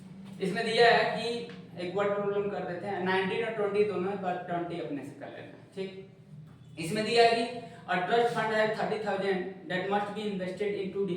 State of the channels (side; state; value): both; identical; correlation 1.00